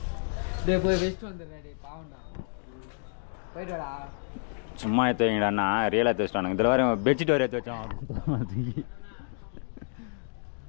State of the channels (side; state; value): right; silent; digital silence